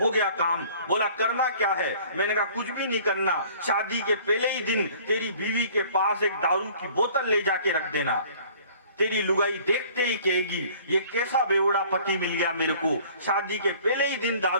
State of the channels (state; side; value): inverted; both; correlation -0.51